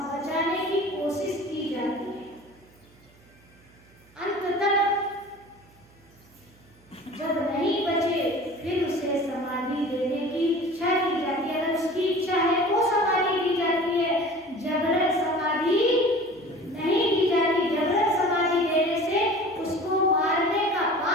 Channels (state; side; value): noise; right; hum, 29 dB below the sound